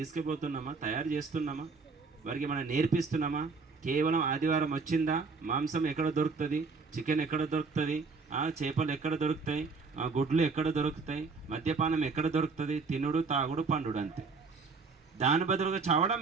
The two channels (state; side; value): quieter; left; 4.5 dB